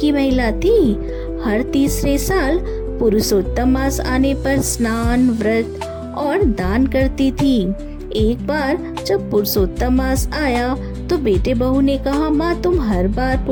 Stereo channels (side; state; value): both; identical; correlation 1.00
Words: महिला थी। हर तीसरे साल पुरुषोत्तम मास आने पर स्नान, व्रत और दान करती थी। एक बार जब पुरुषोत्तम मास आया तो बेटे बहू ने कहा, माँ तुम हर बार